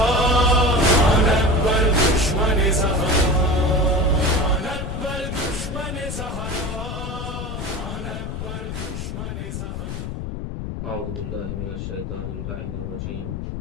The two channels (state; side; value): noise; left; rumble, 6 dB below the sound